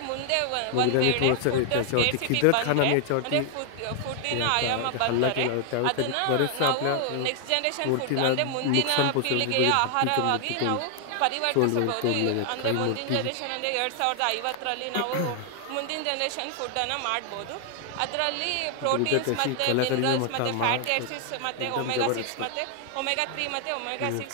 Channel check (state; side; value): different; both; correlation 0.00